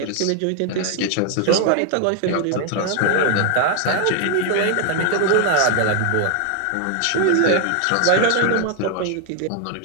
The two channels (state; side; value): different; both; correlation 0.00